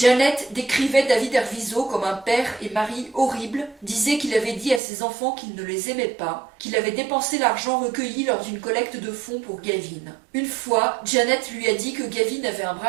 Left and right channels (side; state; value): left; drops out; at 4.8 s